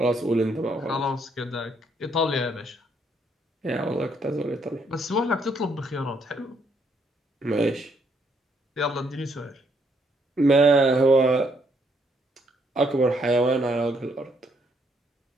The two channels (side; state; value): both; normal; correlation 0.71